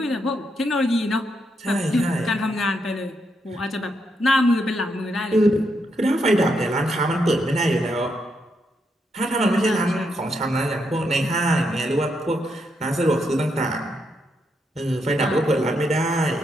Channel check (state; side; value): normal; both; correlation 0.80